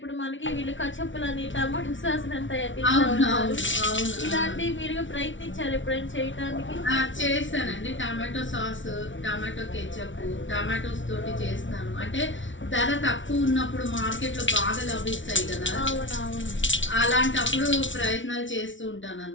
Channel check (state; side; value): late; right; 0.56 ms